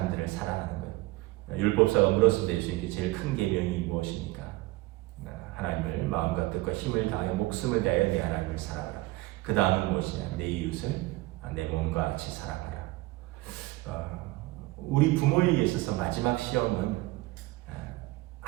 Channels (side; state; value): left; quieter; 20.0 dB